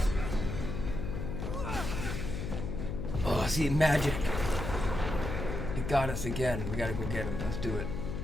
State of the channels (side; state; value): left; noise; hum, 4 dB below the sound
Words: Oh, see, magic. It got us again. We gotta go get him. Let's do it.